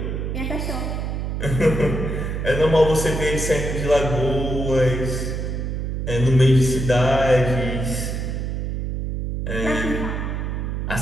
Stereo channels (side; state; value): right; noise; hum, 3 dB below the sound